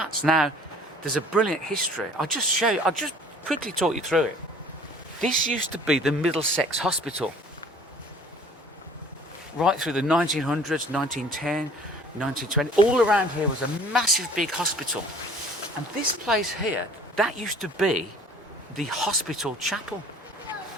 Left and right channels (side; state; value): both; normal; correlation 0.51